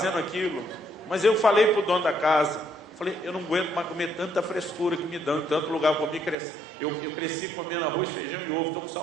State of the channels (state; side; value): drops out; left; at 6.4 s